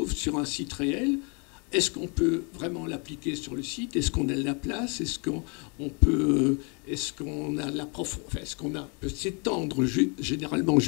sur un site réel est-ce qu'on peut vraiment l'appliquer sur le site? Est-ce qu'on a de la place? Est-ce qu'on peut, est-ce qu'on a la est-ce qu'on peut s'étendre? Généralement, en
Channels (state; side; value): quieter; right; 34.5 dB